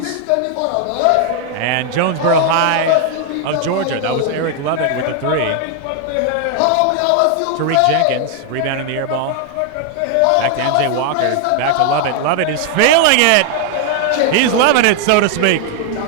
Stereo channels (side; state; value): both; different; correlation 0.00